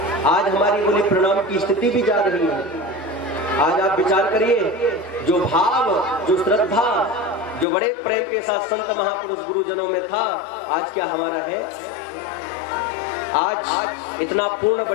आज हमारी बोले प्रणाम की स्थिति भी जा रही है। आज आप विचार करिए, जो भाव, जो श्रद्धा, जो बड़े प्रेम के साथ संत महापुरुष गुरुजनों में था, आज क्या हमारा है? आज इतना पूर्ण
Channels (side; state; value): right; drops out; at 7.7 s